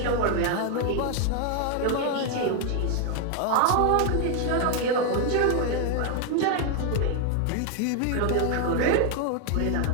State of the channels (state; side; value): different; both; correlation 0.00